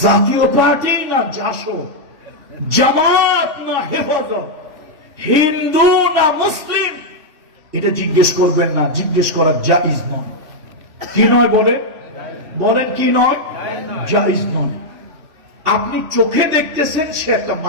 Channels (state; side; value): late; left; 3.5 ms